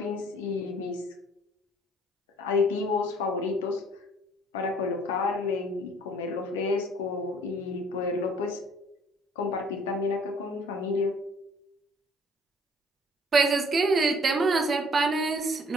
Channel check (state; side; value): normal; both; correlation 0.57